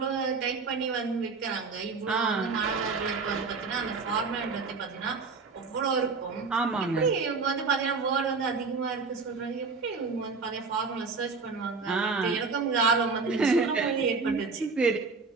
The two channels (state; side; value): quieter; left; 4.5 dB